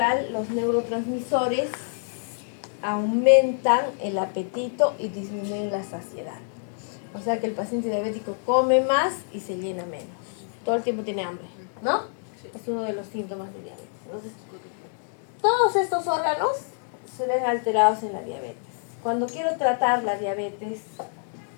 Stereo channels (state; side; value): silent; right; 61 dB below the other